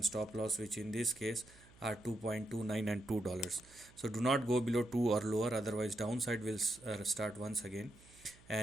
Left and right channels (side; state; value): right; noise; hum, 25 dB below the sound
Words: stop loss, which in this case are 2.29 and $2. So do not go below 2 or lower, otherwise downside will start once again.